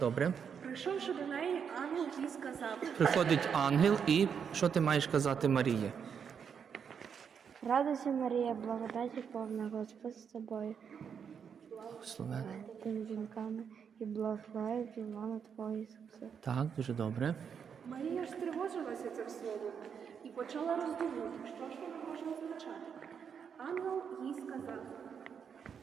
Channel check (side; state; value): left; quieter; 7.1 dB